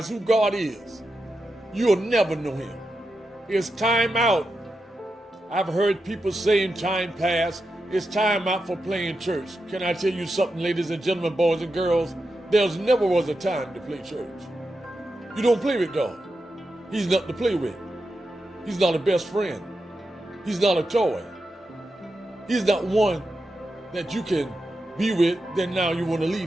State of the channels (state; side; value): normal; both; correlation 0.88